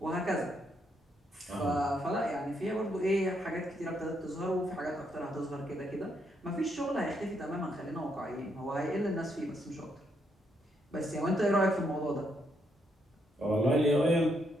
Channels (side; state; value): both; normal; correlation 0.76